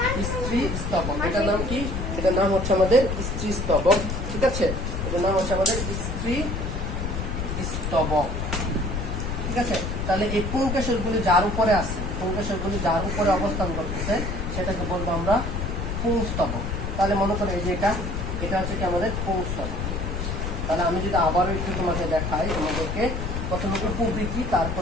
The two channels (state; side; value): noise; left; rumble, 3 dB below the sound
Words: স্ত্রী স্তবক, এটার নাম কি? এটার নাম হচ্ছে আমাদের স্ত্রী স্তবক, ঠিক আছে। এটার নাম হচ্ছে আমাদের স্ত্রী স্তবক, ঠিক আছে। তাহলে এই পুংকেশরগুলি যার উপরে আছে, পুংকেশরগুলি যার উপরে অবস্থান করতেছে, সেটাকে বলবো আমরা পুংস্তবক। তাহলে মনে করো এই যে এটা হচ্ছে কি আমাদের পুংস্তবক। তাহলে আমি যদি আবারও একটু তোমাকে দেখাই, তোমাদেরকে প্রথমে উপবৃত্তি,